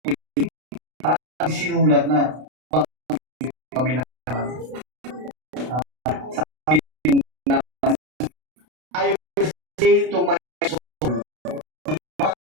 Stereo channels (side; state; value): left; late; 32 ms